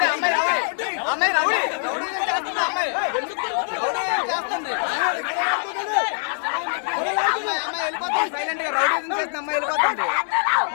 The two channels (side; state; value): right; silent; digital silence